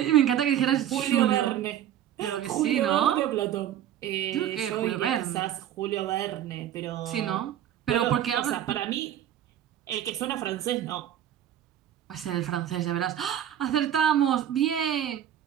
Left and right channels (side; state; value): left; quieter; 10.9 dB